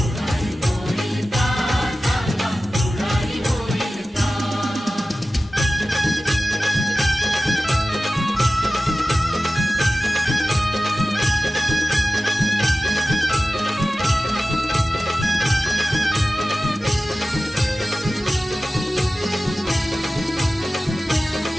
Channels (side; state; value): both; normal; correlation 0.95